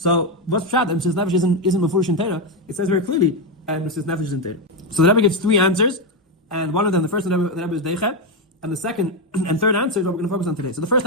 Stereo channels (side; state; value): both; normal; correlation 0.07